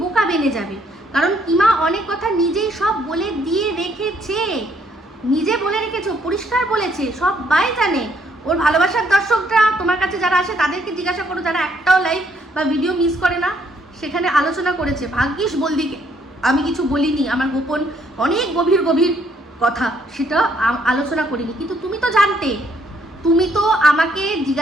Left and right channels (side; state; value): both; normal; correlation 0.69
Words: বেনে যাবে। কারণ কিমা অনেক কথা নিজেই সব বলে দিয়ে রেখেছে, নিজে বলে রেখেছে, পরিষ্কার বলেছে, সবাই জানে। ওর ভালোবাসার দর্শকরা তোমার কাছে যারা আসে তাদেরকে জিজ্ঞাসা করো, যারা একটাও লাইভ বা ভিডিও মিস করে না, সেখানে আলোচনা করেছে। ভাগ্যিস বলদিকে আমি কিছু বলিনি, আমার গোপন অনেক গভীর কথা সেটা আলোচনা করিনি, কিন্তু তুমি তো জানতে, তুমি তো আমাকে